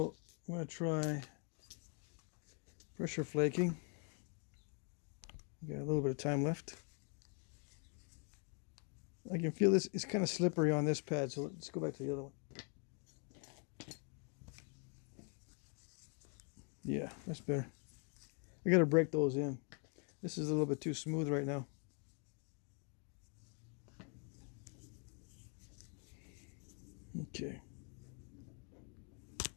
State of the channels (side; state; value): right; quieter; 38.2 dB